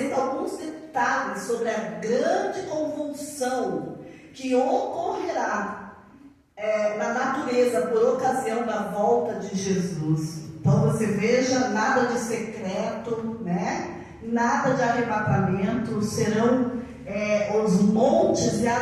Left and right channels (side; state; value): both; identical; correlation 1.00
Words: alguns detalhes sobre a grande convulsão que ocorrerá na natureza por ocasião da volta de Jesus. Então você veja, nada de secreto, né? Nada de arrebatamento, serão os montes e